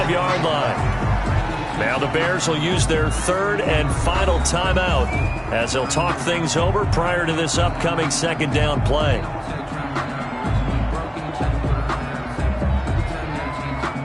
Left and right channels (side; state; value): both; identical; correlation 1.00